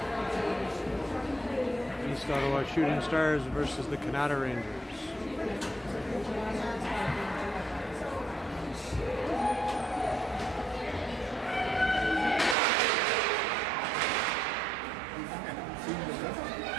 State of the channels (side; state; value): left; drops out; at 12.6 s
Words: East Ottawa Shooting Stars versus the Canada Rangers.